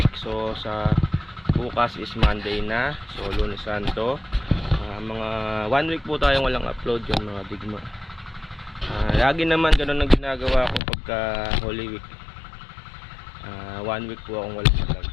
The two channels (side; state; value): right; drops out; at 10.8 s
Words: So, sa bukas is Monday na. So, Lunes Santo. Mga 1 week po tayong walang upload yung mga digma. Lagi naman ganun ang ginagawa ko pagka Holy Week. 1 week po akong walang vlog.